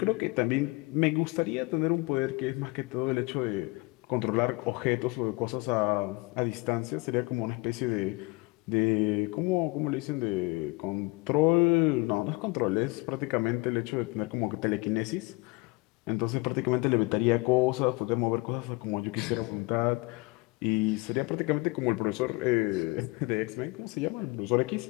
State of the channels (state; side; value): quieter; right; 25.4 dB